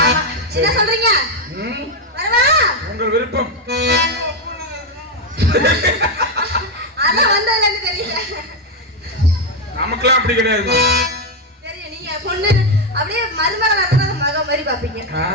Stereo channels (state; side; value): normal; both; correlation 0.06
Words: ஆமா. என்ன சொல்றீங்க? வரவா? உங்கள் விருப்பம். அதான் வந்ததுல இருந்து தெரியல. நமக்குலாம் அப்படி கிடையாது. தெரியும், நீங்க பொண்ணு அப்படியே மருமகளா இருந்தா மக மாதிரி பாப்பீங்க.